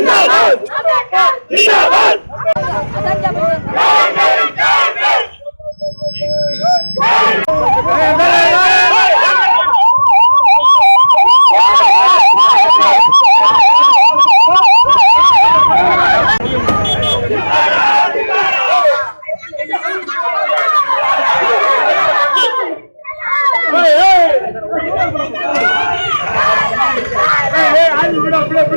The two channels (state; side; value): inverted; both; correlation -1.00